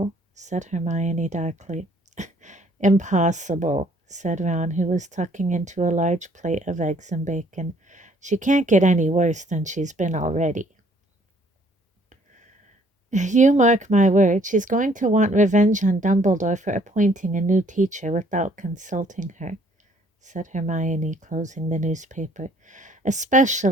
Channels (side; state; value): both; normal; correlation 0.62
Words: said Hermione darkly. Impossible, said Ron, who was tucking into a large plate of eggs and bacon. She can't get any worse than she's been already. You mark my word, she's going to want revenge on Dumbledore for appointing a new teacher without consulting her, said Hermione, closing the newspaper.